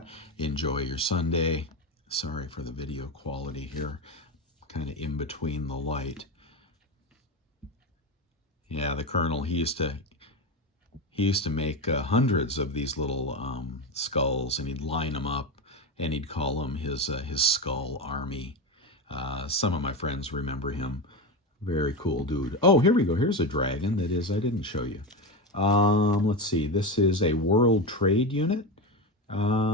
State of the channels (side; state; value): both; normal; correlation 0.18